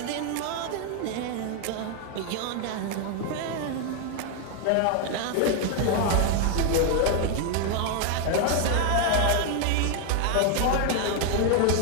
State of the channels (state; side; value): different; both; correlation 0.00